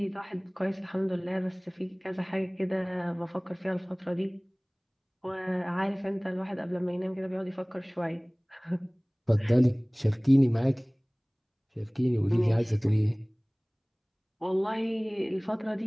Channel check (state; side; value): identical; both; correlation 1.00